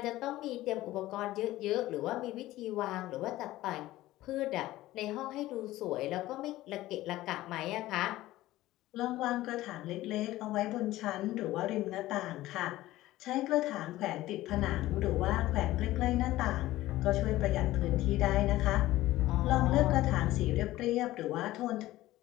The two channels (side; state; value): right; quieter; 16.3 dB